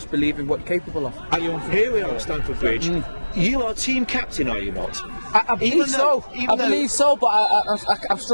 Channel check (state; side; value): inverted; both; correlation -1.00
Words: believe in what you're capable of. Here we are at Stamford Bridge. You are team captain, are you not? I believe so. I believe so, but I'm